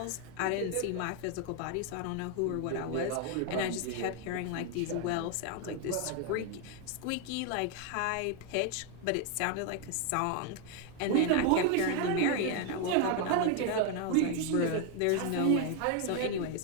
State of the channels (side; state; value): both; different; correlation 0.01